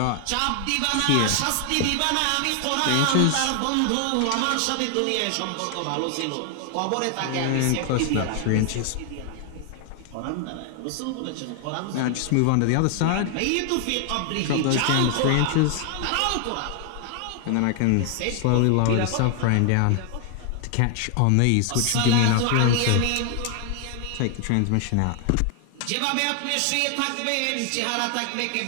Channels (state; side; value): different; both; correlation 0.00